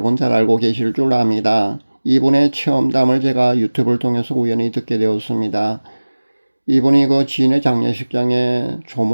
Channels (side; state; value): both; inverted; correlation -1.00